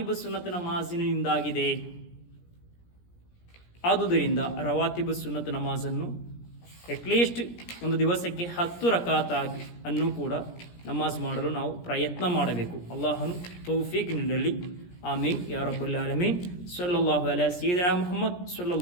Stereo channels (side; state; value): right; late; 17 ms